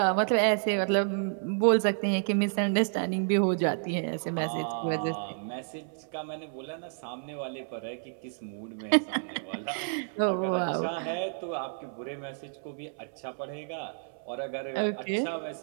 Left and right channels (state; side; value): silent; left; 58 dB below the other